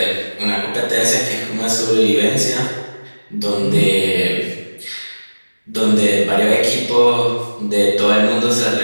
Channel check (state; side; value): inverted; both; correlation -1.00